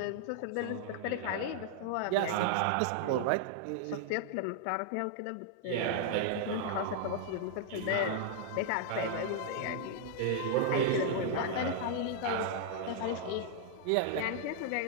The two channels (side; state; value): both; different; correlation -0.01